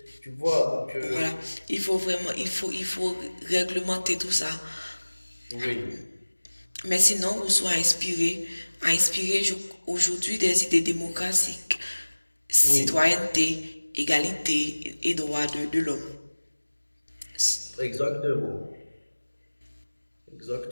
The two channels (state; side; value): inverted; both; correlation -1.00